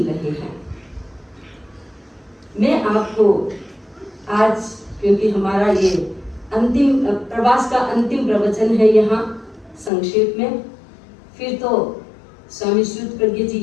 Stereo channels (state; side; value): drops out; right; at 9.9 s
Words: रहे हैं। मैं आपको आज, क्योंकि हमारा ये अंतिम प्रवास का अंतिम प्रवचन है यहाँ संक्षेप में, फिर तो स्वामी श्रुत प्रज्ञ जी